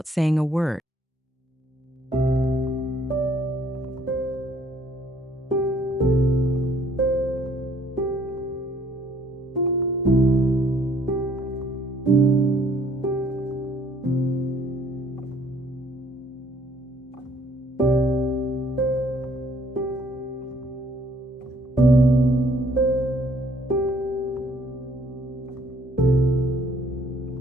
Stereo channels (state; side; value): normal; both; correlation 0.62